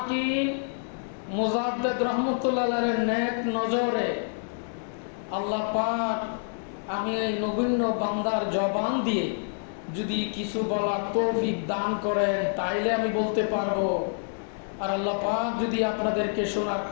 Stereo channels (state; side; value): silent; right; digital silence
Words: মুজাদ্দিদ রহমতুল্লাহের নেক নজরে আল্লাহ পাক আমি এই নগণ্য বান্দার জবান দিয়ে যদি কিছু বলার তৌফিক দান করেন তাইলে আমি বলতে পারবো, আর আল্লাহ পাক যদি আপনাদেরকে শোনার